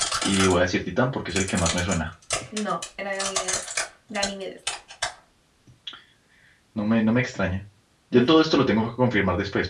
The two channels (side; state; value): both; identical; correlation 1.00